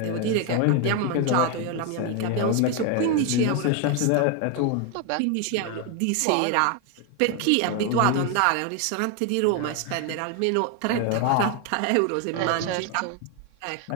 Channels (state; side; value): different; both; correlation 0.01